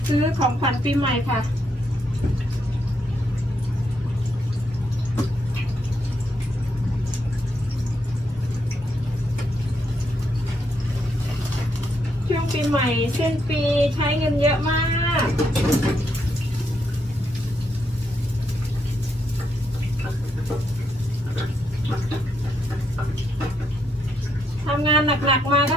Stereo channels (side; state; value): both; normal; correlation 0.78